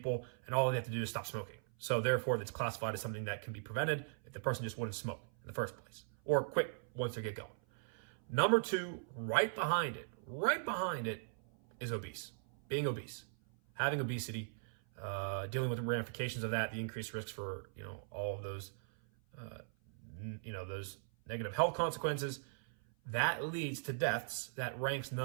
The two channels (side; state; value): left; silent; 52 dB below the other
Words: and all they have to do is stop smoking. So therefore, it's classified as something that can be prevented if the person just wouldn't smoke in the first place, or quit once they get going. Number 2, right behind it is obese. Being obese, having obesity, dealing with the ramifications of that, the increased risks for all of those, those negative health consequences. That leads to deaths. That ranks